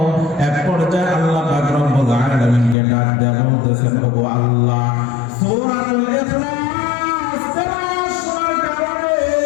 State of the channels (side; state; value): right; drops out; at 2.8 s